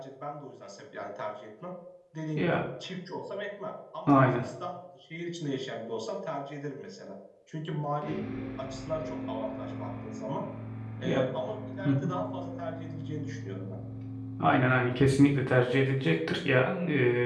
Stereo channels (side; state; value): both; identical; correlation 1.00